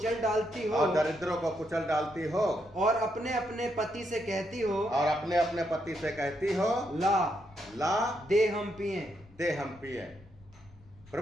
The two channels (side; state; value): left; noise; rumble, 24 dB below the sound